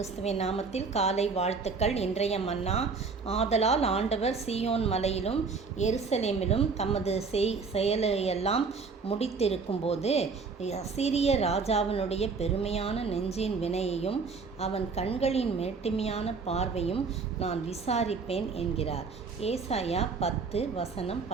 நாமத்தில் காலை வாழ்த்துக்கள். இன்றைய மன்னா, ஆதலால் ஆண்டவர் சீயோன் மலையிலும் எருசலேமிலும் தமது செயலையெல்லாம் முடித்திருக்கும்போது அசீரிய ராஜாவினுடைய பெருமையான நெஞ்சின் வினையையும் அவன் கண்களின் மேட்டிமையான பார்வையும் நான் விசாரிப்பேன் என்கிறார். ஏசாயா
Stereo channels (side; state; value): left; quieter; 4.8 dB